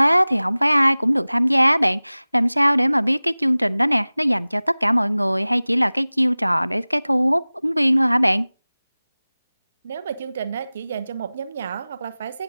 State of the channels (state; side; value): inverted; both; correlation -0.99